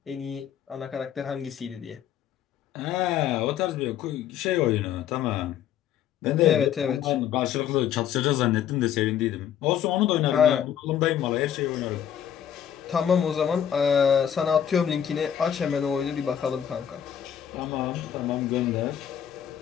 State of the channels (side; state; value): right; quieter; 9.5 dB